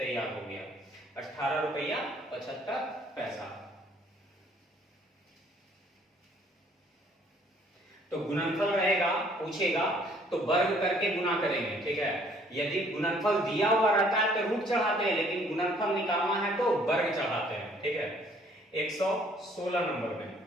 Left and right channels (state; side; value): normal; both; correlation 0.60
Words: हो गया, 18 रुपया 75 पैसा। तो गुणनफल रहेगा, पूछेगा तो वर्ग करके गुना करेंगे। ठीक है, यदि गुणनफल दिया हुआ रहता है तो रूट चढ़ाते हैं, लेकिन गुणनफल निकालना है तो वर्ग चढ़ाते हैं। ठीक है, 116 नंबर में